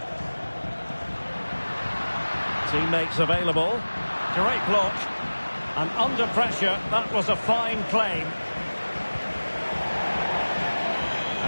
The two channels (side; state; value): both; inverted; correlation -1.00